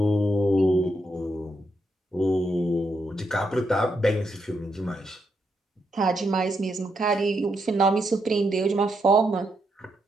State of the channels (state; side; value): normal; both; correlation 0.80